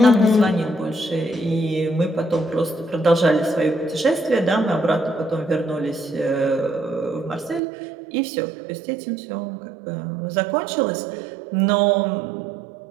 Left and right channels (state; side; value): drops out; left; at 7.6 s